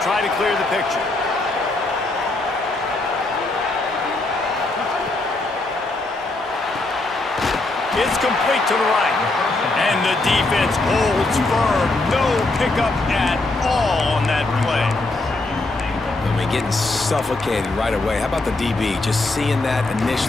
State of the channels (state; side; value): quieter; right; 3.0 dB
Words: try to clear the picture. It's complete to the right. And the defense holds firm. No pickup at all on that play. I mean, getting suffocated right away. How about the DB? Just seeing that